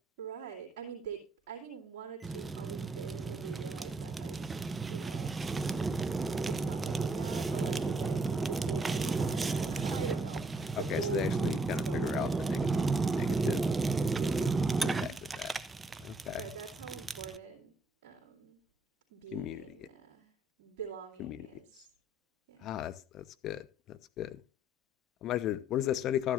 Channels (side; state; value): both; normal; correlation 0.70